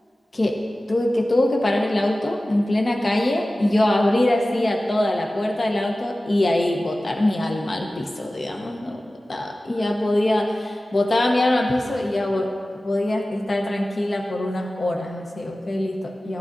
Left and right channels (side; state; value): both; normal; correlation 0.96